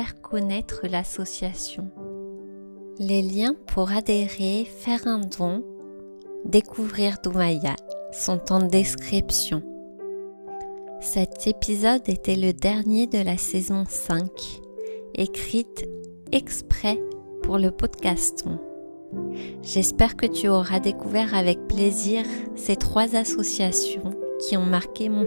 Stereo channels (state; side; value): inverted; both; correlation -1.00